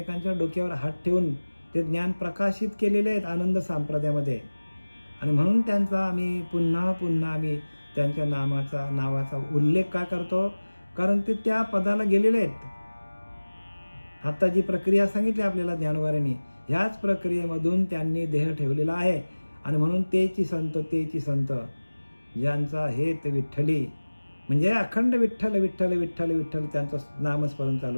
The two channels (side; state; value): both; inverted; correlation -1.00